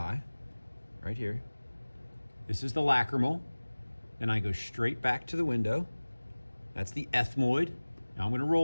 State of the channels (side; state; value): both; inverted; correlation -1.00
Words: right here. This is the lacrimal. Then I go straight back to the window. That's the ethmoid. Now I'm going to